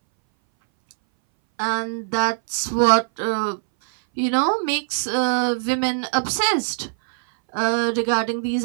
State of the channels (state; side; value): silent; left; 61 dB below the other